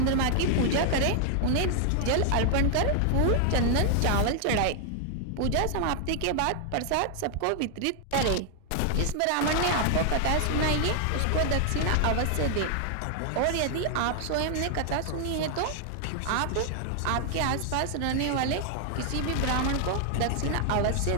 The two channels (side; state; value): both; different; correlation 0.00